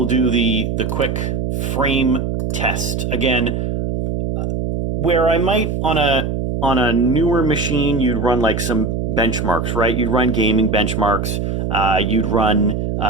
do the quick frame test. Again, where I might on a newer machine, you'd run like some benchmarks, right? You'd run gaming benchmarks. You'd run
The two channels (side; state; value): right; noise; hum, 1 dB below the sound